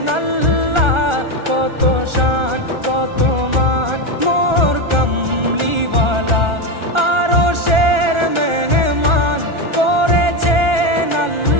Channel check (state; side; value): late; left; 1.4 ms